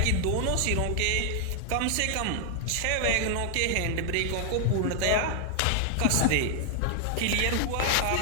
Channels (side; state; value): both; different; correlation 0.00